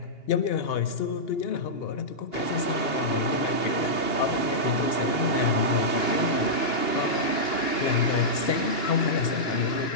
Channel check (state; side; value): late; right; 2.8 ms